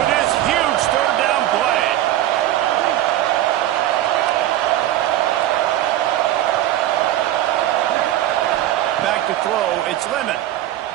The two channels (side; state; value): left; quieter; 13.4 dB